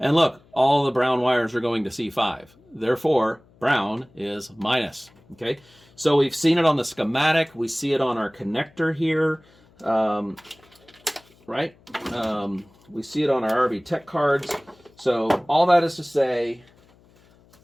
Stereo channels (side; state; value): left; noise; hum, 30 dB below the sound